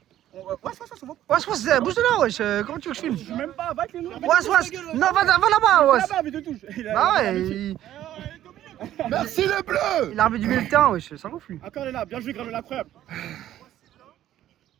Ouais, c'est bon. Ouais, bouge de là, wesh. Comment tu veux que je filme? Je suis même pas, va avec les noms. Ouais. Non, va là-bas, ouais. Là-bas, mais de touche. Bah ouais, merci les bleus. il a armé du milieu de terrain, wesh. Ça gonfle lui. Encore, elle est là, bien joué Granola, incroyable.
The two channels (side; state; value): left; quieter; 12.5 dB